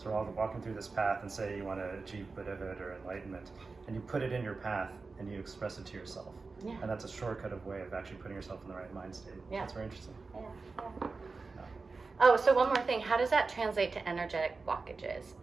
we're all walking through this path, and say you want to achieve Buddhahood or enlightenment, and you put it in your path and you express it to yourself. Yeah. And that's a shortcut of way of actually putting yourself in the right mind state. Yeah. That's very interesting. Yeah. Yeah. Oh, so one more thing. How does that translate to energetic blockages?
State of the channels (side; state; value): left; quieter; 4.1 dB